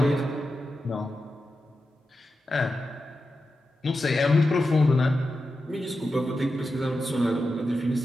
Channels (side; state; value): both; normal; correlation 0.90